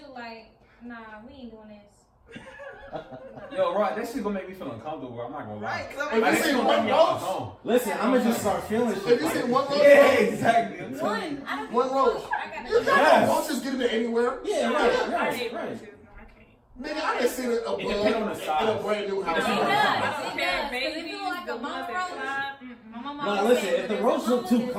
like, nah, we ain't doing this. Yo, right, that shit gonna make me feel uncomfortable. I'm not gonna lie. Right, 'cause If I'm you like, see gonna one make me off my roach, phone. Listen, I'm gonna just start feeling shit. if you see one roach, Yeah, exactly. I'm telling you. One. I don't One give a roach. fuck. I gotta You go. got Yes. roaches getting it anywhere. Yeah, I right, hate right. roaches. No, I can't. Nigga, I done seen a bug It depends on the in size. a brand new house. It does. I don't It care, does. 'Cause if babies, it look like the a ones mama that roach, fly. my mama No, always listen, said if the there's a roach mama, look too there's a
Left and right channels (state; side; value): identical; both; correlation 1.00